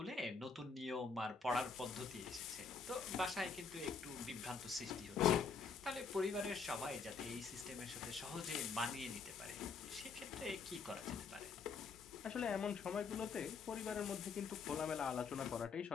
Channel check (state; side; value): quieter; right; 5.2 dB